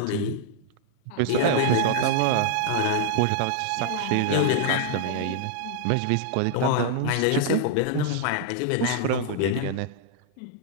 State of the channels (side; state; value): both; different; correlation -0.01